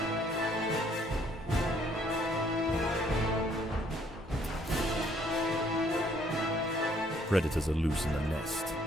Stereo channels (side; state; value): both; normal; correlation 0.64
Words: Predators are loose in the nest.